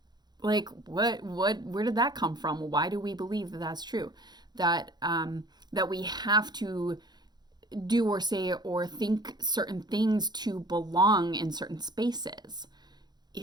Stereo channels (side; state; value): left; late; 0.20 ms